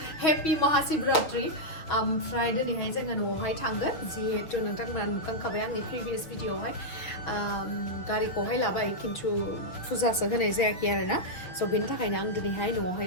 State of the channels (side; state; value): right; late; 6.5 ms